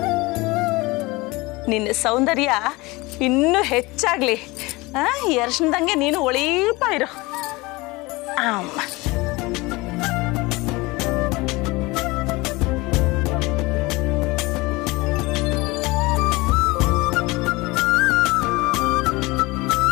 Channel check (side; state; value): right; quieter; 22.8 dB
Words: ನಿನ್ನ ಸೌಂದರ್ಯ ಇನ್ನೂ ಹೆಚ್ಚಾಗ್ಲಿ. ಈ ಅರ್ಶನದಂಗೆ ನೀನು ಒಳೀಪ ಇರು. ಅಮ್ಮ,